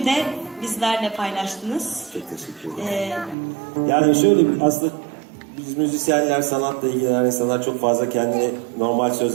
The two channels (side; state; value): left; drops out; at 3.4 s